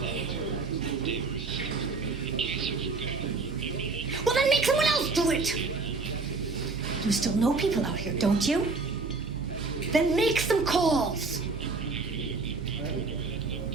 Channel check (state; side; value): quieter; left; 3.9 dB